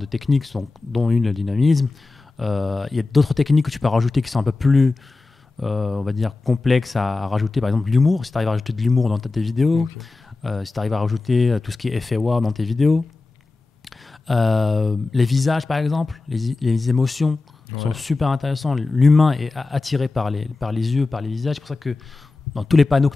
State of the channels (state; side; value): quieter; right; 3.6 dB